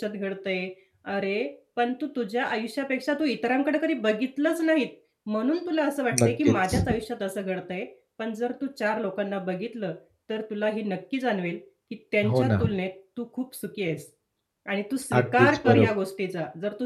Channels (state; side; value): identical; both; correlation 1.00